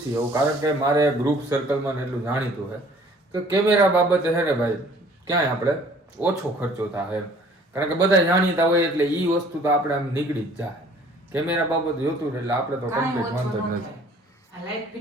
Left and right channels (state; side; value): normal; both; correlation 0.54